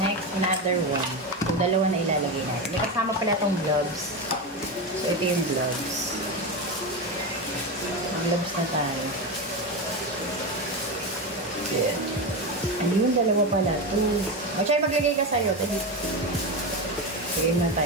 Next, another one. Yung dalawa na ilalagay natin. May kasama pala itong gloves. So, ito yung gloves. Gloves na tayo. Yeah. Ano yung dalawa pala? Two. Machay, maglagay ka sa'yo. Sige na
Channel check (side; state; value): both; normal; correlation 0.17